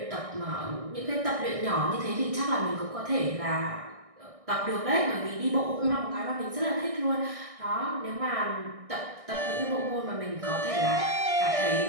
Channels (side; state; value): left; late; 1.6 ms